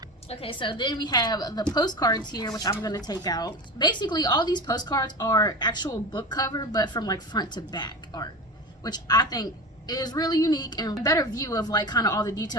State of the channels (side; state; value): both; normal; correlation 0.28